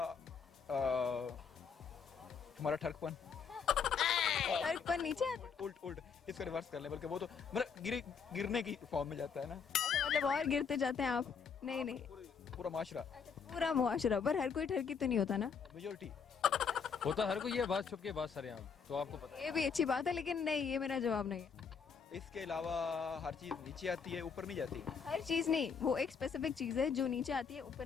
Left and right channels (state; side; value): quieter; right; 6.2 dB